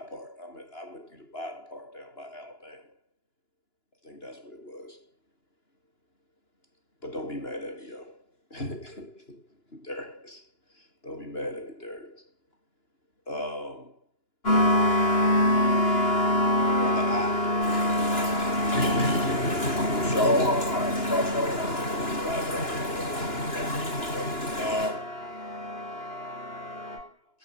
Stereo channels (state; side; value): late; right; 2.9 ms